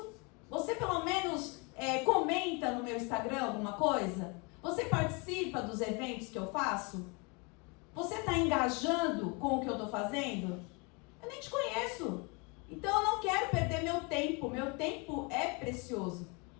Você pelo menos comenta no meu Instagram alguma coisa? Você participa dos eventos que eu faço? Você está engajando com o que eu estou fazendo? Eu nem te conheço. Então eu não quero perder meu tempo é precioso.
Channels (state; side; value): quieter; right; 30.7 dB